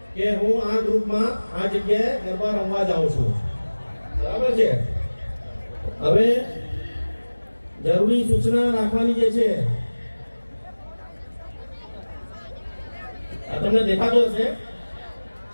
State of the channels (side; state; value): both; inverted; correlation -1.00